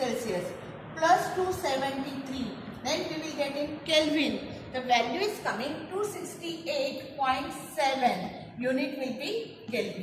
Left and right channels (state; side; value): identical; both; correlation 1.00